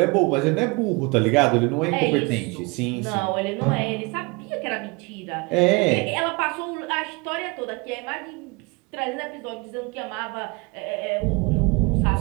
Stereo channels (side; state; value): left; quieter; 27.4 dB